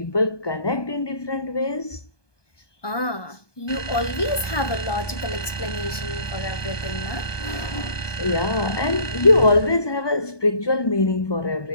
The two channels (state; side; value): late; right; 1.2 ms